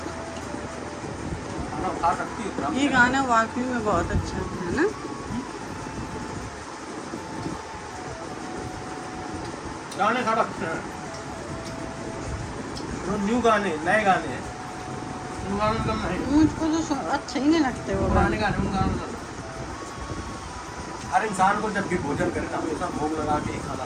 खा सकती हो। ये गाना वाकई में बहुत अच्छा है ना। गाने खा रखे हैं, न्यू गाने, नए गाने हैं। मुझको तो अच्छे ही नहीं लगते वो गाने। हर इंसान को जब भी भोजन करे तो हमेशा भोग लगा के ही खाना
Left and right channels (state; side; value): identical; both; correlation 1.00